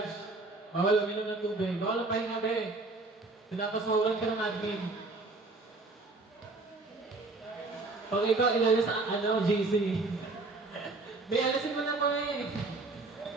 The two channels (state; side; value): quieter; left; 3.4 dB